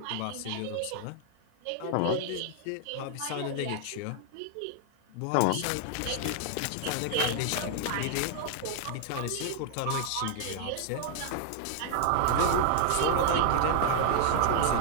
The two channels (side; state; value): both; different; correlation -0.01